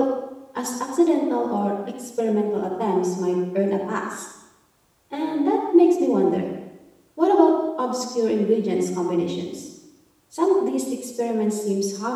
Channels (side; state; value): both; identical; correlation 1.00